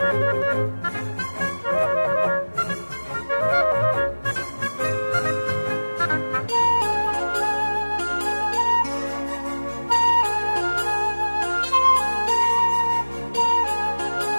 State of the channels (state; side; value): inverted; both; correlation -1.00